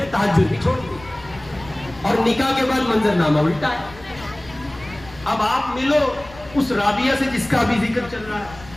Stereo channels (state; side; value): noise; left; rumble, 20 dB below the sound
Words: تہجد بھی چھوڑ دی، اور نکاح کے بعد منظر نامہ الٹا ہے۔ اب آپ ملو اس رابعہ سے جس کا ابھی ذکر چل رہا ہے،